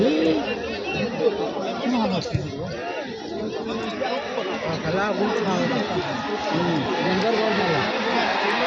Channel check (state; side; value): identical; both; correlation 1.00